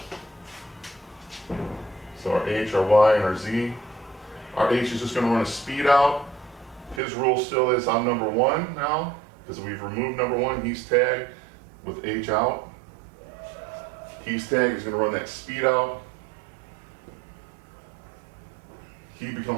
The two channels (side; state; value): left; drops out; at 7.0 s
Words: So our H, our Y, and our Z. Our H is just going to run a speed out. His rule still is I'm number one now, because we've removed number one. He's tagged with H out. He's tagged, he's going to run that speed out. He